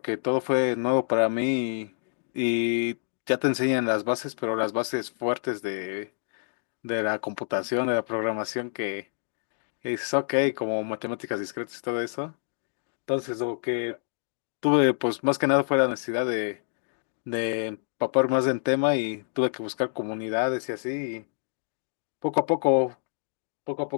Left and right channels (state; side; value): silent; right; digital silence